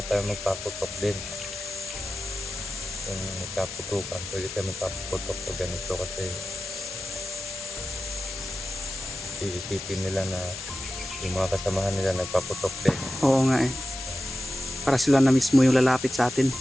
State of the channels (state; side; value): noise; left; hiss, 9 dB below the sound